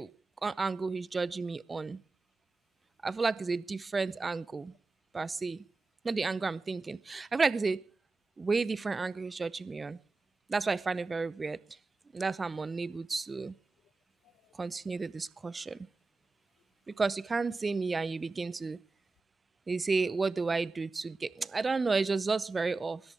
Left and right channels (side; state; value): left; quieter; 3.8 dB